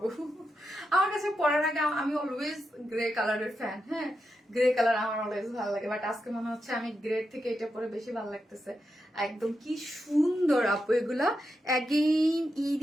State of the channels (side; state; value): both; normal; correlation 0.86